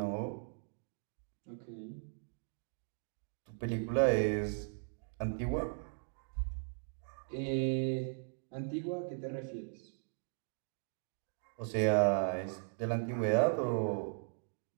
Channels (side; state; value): left; silent; digital silence